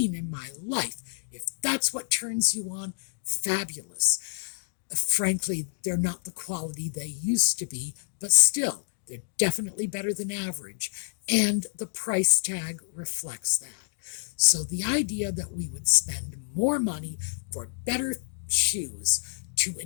in my life. If that's what turns you on, fabulous. Frankly, they're not the quality they used to be, but still, they're definitely better than average, and the price tag reflects that. So the idea that we would spend more money for better shoes to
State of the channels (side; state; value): right; silent; digital silence